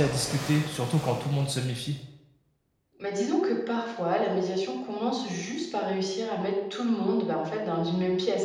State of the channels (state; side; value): identical; both; correlation 1.00